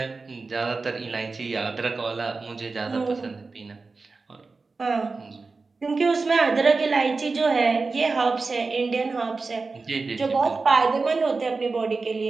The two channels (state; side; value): quieter; left; 4.0 dB